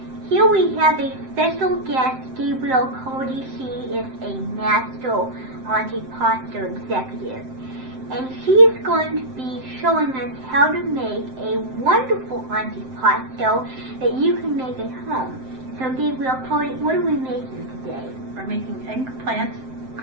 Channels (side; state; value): left; late; 7.7 ms